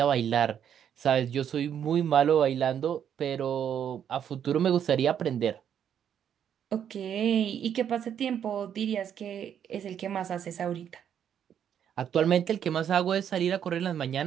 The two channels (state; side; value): quieter; left; 9.0 dB